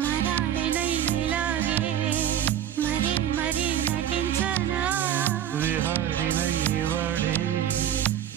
మరాళినైలాగే మరీ మరీ నటించనా విహారినై వాడే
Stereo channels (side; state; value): left; quieter; 10.4 dB